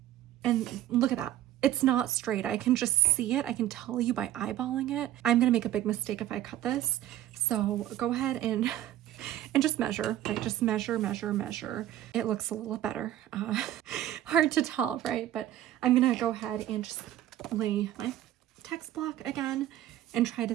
And look at that. It's not straight. I can just see it. I can tell you by eyeballing it. I'm gonna make a big mistake if I cut this. So go ahead and just measure, right? Just measure, measure, measure. It looks a little better. Hard to tell, right? But I'm gonna go ahead and just lay my text block again and try to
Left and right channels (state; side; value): quieter; left; 12.9 dB